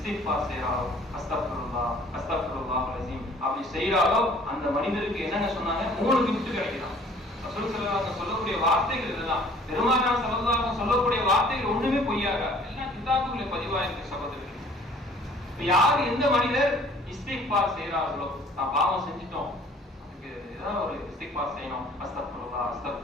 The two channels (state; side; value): normal; both; correlation 0.54